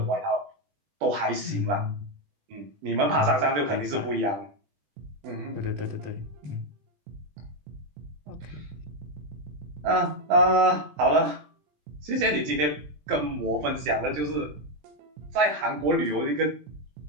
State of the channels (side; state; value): left; late; 20 ms